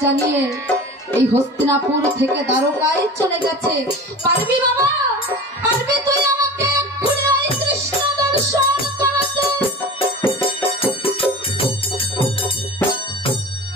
জানিয়ে এই হস্তিনাপুর থেকে দ্বারকায় চলে গেছে। পারবি বাবা, পারবি তুই আমাকে এক্ষুনি ওই কৃষ্ণ দর্শন করাতে?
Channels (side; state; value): both; normal; correlation 0.36